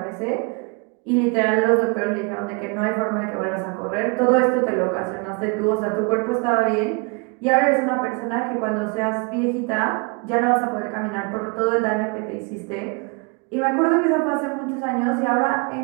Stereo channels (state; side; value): quieter; left; 32.1 dB